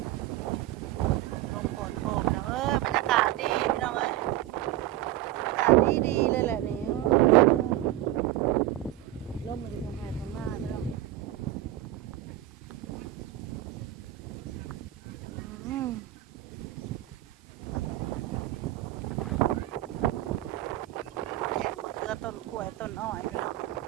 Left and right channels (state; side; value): quieter; left; 14.8 dB